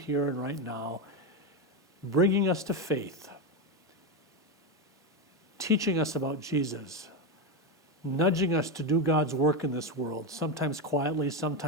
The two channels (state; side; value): normal; both; correlation 0.11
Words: and right now, bringing us to faith, teaching us about Jesus, nudging us to do God's work in this world, sometimes quietly,